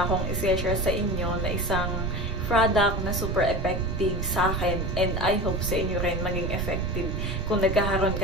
akong i-share sa inyo na isang product na super effective sa akin, and I hope sa inyo rin maging effective kung nagkakaroon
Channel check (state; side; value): noise; right; rumble, 1 dB below the sound